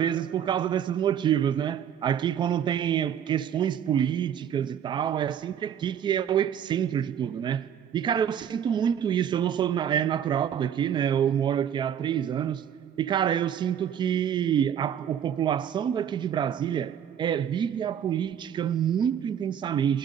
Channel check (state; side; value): quieter; left; 9.0 dB